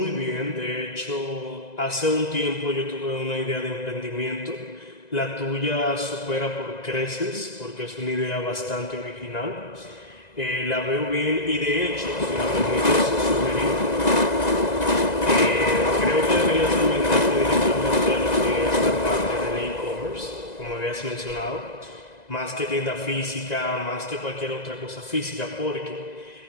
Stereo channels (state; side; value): late; right; 2.0 ms